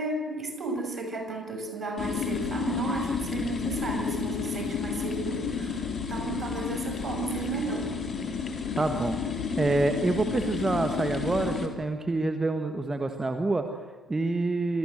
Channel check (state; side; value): normal; both; correlation 0.70